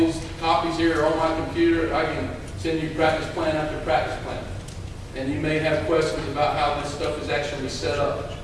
copies here on my computer. I can send you practice plan after practice plan. And you may have questions about how this stuff is actually set up.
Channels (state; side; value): identical; both; correlation 1.00